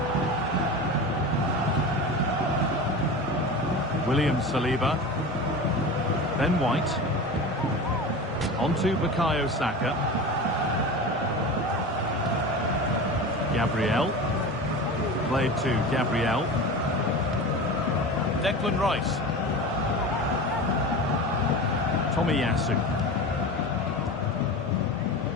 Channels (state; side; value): normal; both; correlation 0.30